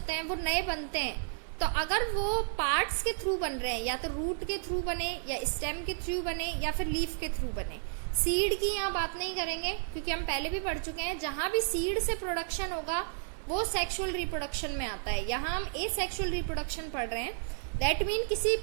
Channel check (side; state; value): left; silent; 56 dB below the other